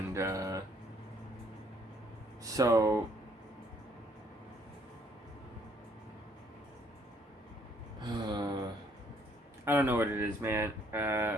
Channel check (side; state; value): both; normal; correlation 0.65